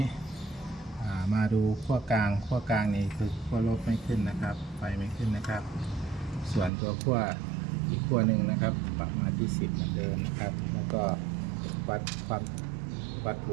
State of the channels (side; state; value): left; drops out; at 6.7 s